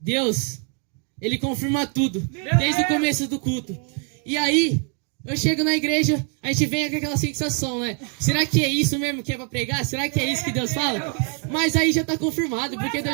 Deus, Ele confirma tudo. Desde o começo do culto. E aí, eu chego na igreja, a gente vem com aquela sensação, né? Será que é isso mesmo que é pra pregar? Será que é isso que Deus fala? Mas aí já tá confirmado, porque Deus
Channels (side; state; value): left; quieter; 39.9 dB